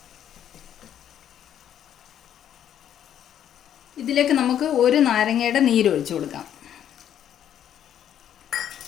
ഇതിലേക്ക് നമുക്ക് ഒരു നാരങ്ങയുടെ നീര് ഒഴിച്ചു കൊടുക്കാം.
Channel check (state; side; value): quieter; right; 10.1 dB